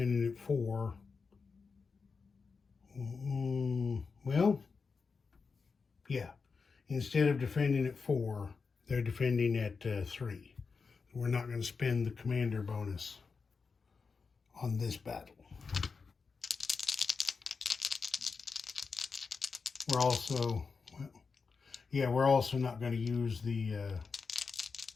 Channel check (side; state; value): right; quieter; 4.9 dB